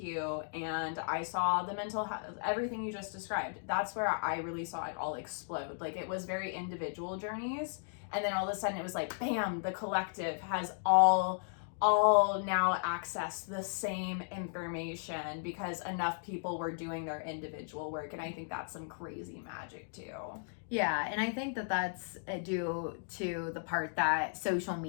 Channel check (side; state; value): right; silent; digital silence